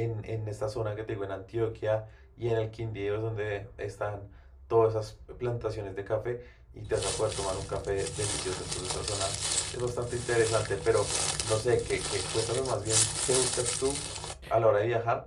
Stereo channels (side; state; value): both; identical; correlation 1.00